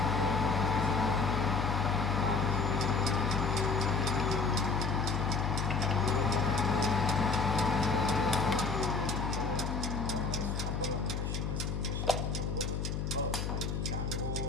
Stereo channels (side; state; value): left; noise; hum, 1 dB below the sound